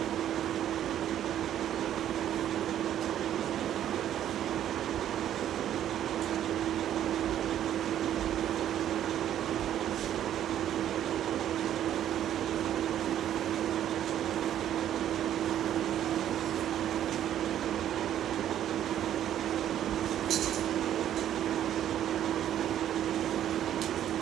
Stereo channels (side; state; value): left; quieter; 11.0 dB